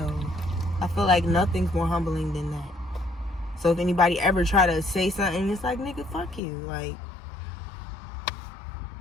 I feel like nothing's more humbling than that. So if anybody ever try to say something, it's like, nigga, fuck you. Like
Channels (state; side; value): drops out; right; at 6.4 s